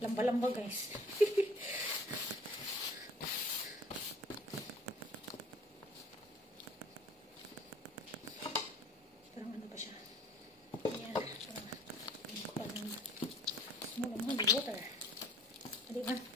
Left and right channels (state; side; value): normal; both; correlation 0.52